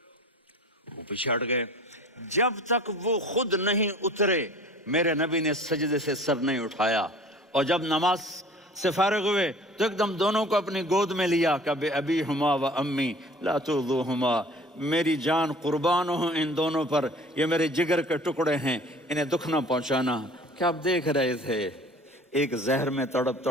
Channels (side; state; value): both; normal; correlation 0.46